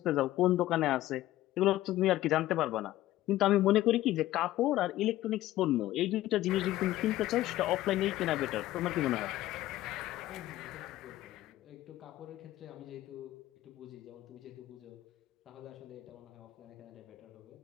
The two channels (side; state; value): right; quieter; 15.3 dB